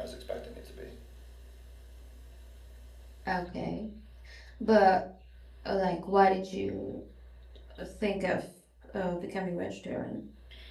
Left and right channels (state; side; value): identical; both; correlation 1.00